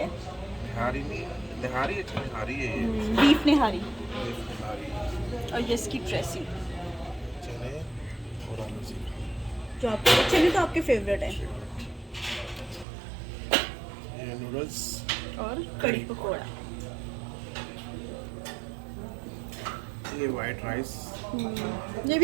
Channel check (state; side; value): drops out; left; at 12.9 s